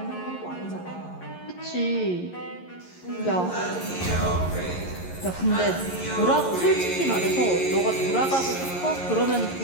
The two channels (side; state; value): right; late; 11 ms